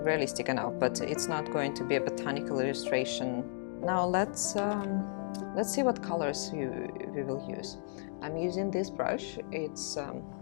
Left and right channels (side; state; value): right; silent; digital silence